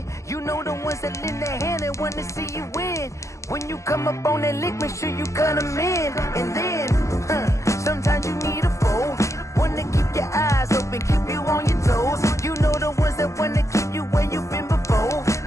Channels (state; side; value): late; right; 0.15 ms